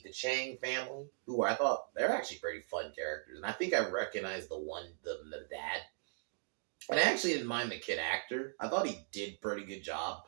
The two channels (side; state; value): left; silent; digital silence